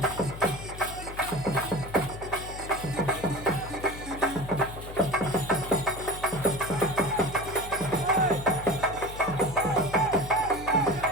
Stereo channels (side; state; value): left; noise; hum, 12 dB below the sound